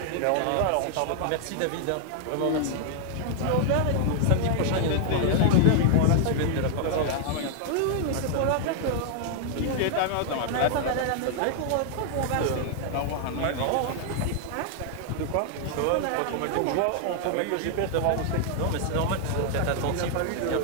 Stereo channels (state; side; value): different; both; correlation 0.00